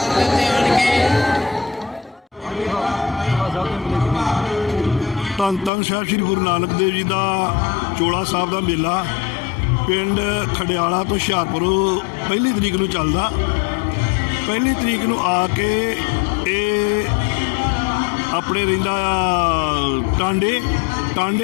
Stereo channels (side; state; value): right; drops out; at 5.7 s